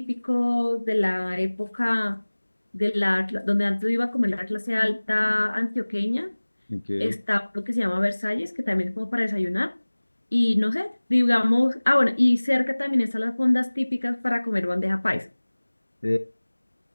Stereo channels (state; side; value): inverted; both; correlation -1.00